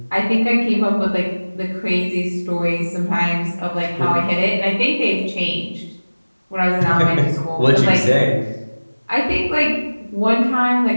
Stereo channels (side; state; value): both; inverted; correlation -1.00